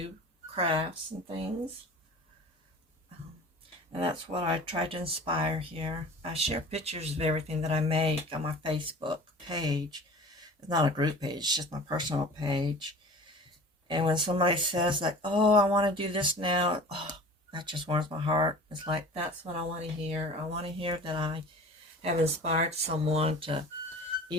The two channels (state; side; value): normal; both; correlation 0.40